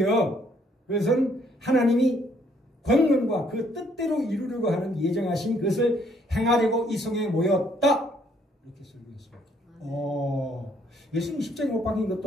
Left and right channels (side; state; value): both; normal; correlation 0.67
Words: 그것은 하나님이 권능과 그 뜻대로 이루려고 하는 예정하신 것을 행하려고 이성에 모였다. 이렇게 설교했습니다. 예수님 십자가에 못 박힌